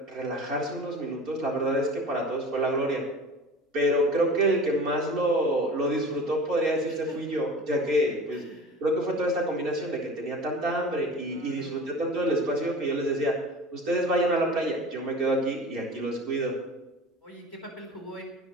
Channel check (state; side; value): normal; both; correlation 0.38